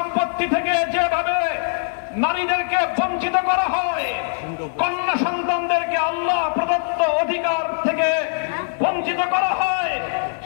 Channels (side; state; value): right; silent; 65 dB below the other